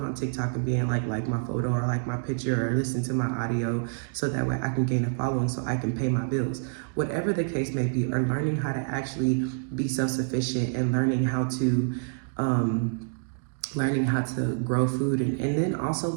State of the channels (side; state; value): left; silent; digital silence